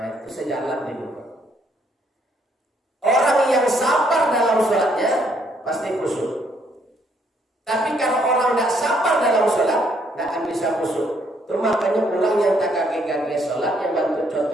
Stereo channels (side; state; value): both; normal; correlation 0.69